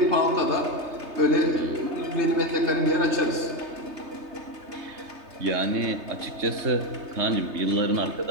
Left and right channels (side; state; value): left; late; 3.3 ms